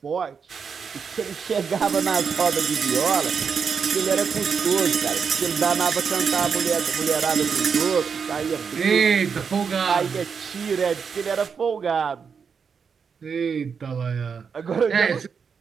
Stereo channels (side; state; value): left; quieter; 6.2 dB